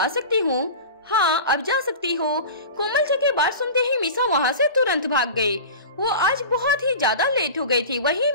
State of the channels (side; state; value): both; inverted; correlation -0.33